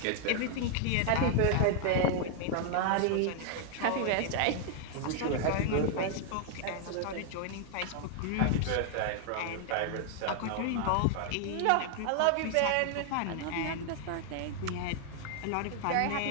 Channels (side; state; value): both; different; correlation 0.00